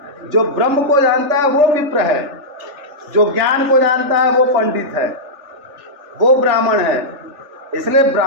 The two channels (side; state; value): left; late; 3.4 ms